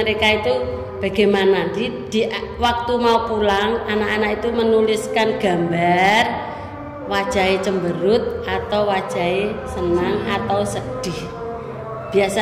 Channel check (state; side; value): identical; both; correlation 1.00